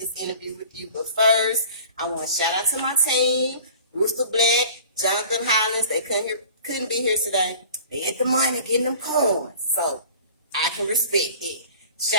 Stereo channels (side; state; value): both; inverted; correlation -0.45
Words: interview with you. But first, I want to shout out to my team, Rooster Black, Jonathan Hollins. They couldn't be here today. They get the money, getting them coins. So I can respect it.